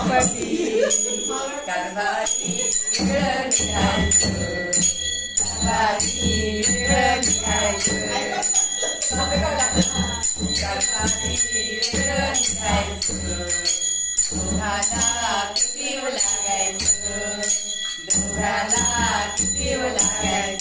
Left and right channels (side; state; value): both; identical; correlation 1.00